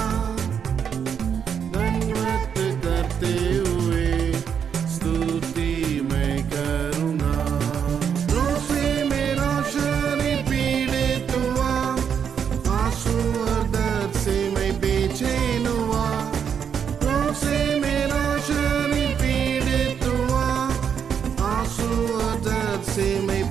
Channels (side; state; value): left; quieter; 7.6 dB